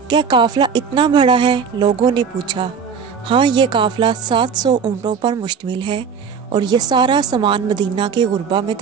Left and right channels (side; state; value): left; quieter; 6.4 dB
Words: क्या काफिला इतना बड़ा है? लोगों ने पूछा। हाँ, ये काफिला 700 ऊँटों पर मुश्तमिल है और ये सारा सामान मदीना के गुरबा में